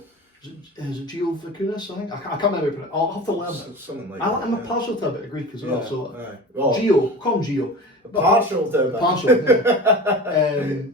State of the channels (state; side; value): normal; both; correlation 0.34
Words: Is it Gio Vakunas, I think? I can't remember. I'll have to learn it. Something like I'm that. a partial to a bit of Greek as well, so Gio, call him Gio. Partial to that. Partial, yeah.